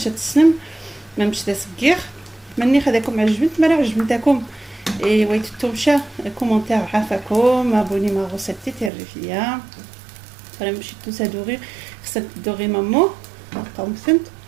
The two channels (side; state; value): left; drops out; at 8.9 s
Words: تسلم ما مش تسقير مني خداكم عجبت مرا عجبتكم اي ويتو مشى كومونتير عافاكم ابوني ما غوسيتي تيرفيا فريم باش تسادوري خصك تدوري مامو قاوم فهمت